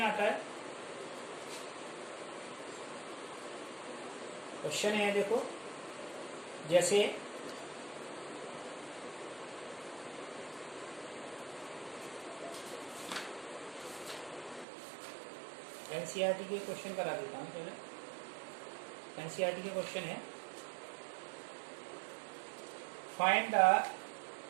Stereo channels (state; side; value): drops out; left; at 14.7 s